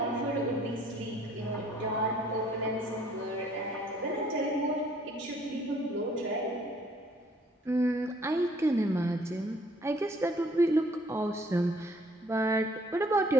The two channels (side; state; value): both; normal; correlation 0.60